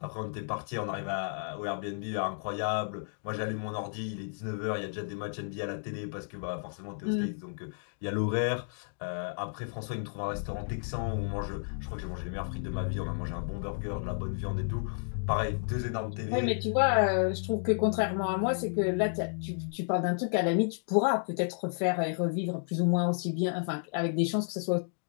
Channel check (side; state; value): right; silent; digital silence